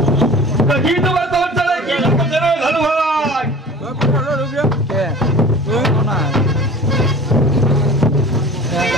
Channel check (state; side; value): normal; both; correlation 0.42